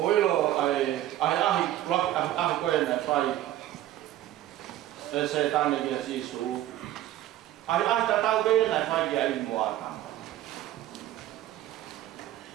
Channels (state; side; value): quieter; left; 13.7 dB